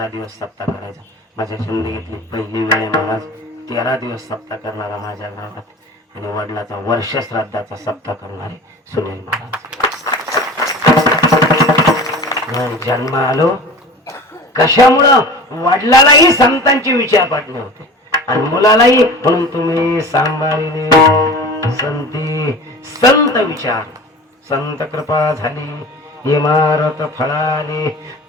दिवस सप्ताह करायचा. माझ्या जिंदगीतली पहिली वेळ महाराज 13 दिवस सप्ताह करणारा माझ्या गावात आणि वडिलाचा वर्ष श्राद्धाचा सप्ताह करणारे सुनील महाराज. जन्म आलो कशामुळं? वडिलालाही संतांचे विचार पडले होते आणि मुलालाही. म्हणून तुम्ही सांभाळले संती संत विचार, संत कृपा झाली इमारत फळाली.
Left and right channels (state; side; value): normal; both; correlation 0.37